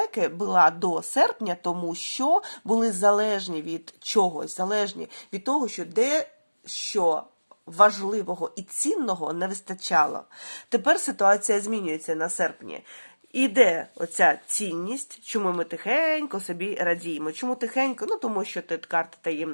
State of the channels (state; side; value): inverted; both; correlation -1.00